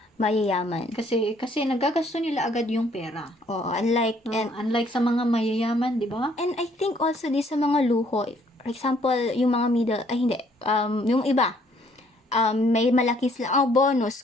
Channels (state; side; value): normal; both; correlation 0.64